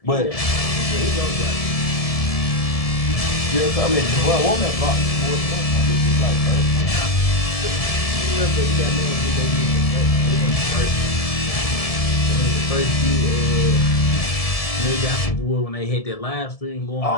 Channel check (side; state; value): right; late; 1.7 ms